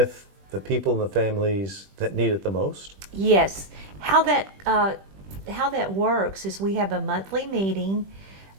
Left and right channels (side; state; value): left; late; 21 ms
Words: the people and the families that need it the most? Yes. How that works is we have a monthly meeting